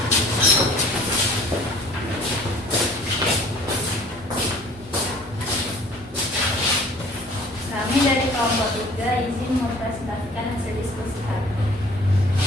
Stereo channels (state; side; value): normal; both; correlation 0.50